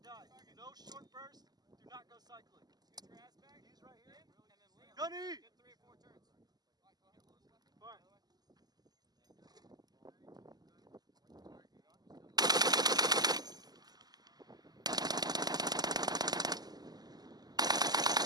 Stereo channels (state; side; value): late; left; 0.20 ms